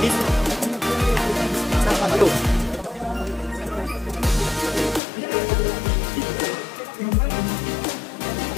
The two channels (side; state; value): right; drops out; at 5.0 s